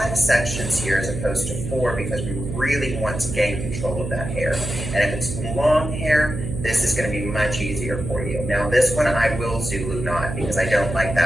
sections here as opposed to 4 because we really want to gain control of that hair. And if it's long hair, this is going to be much easier for you. Now this one I will Zulu knot because I don't like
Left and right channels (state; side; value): noise; right; hum, 6 dB below the sound